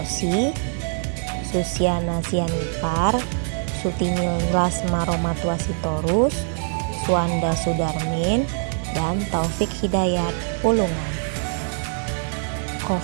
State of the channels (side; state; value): left; silent; 63 dB below the other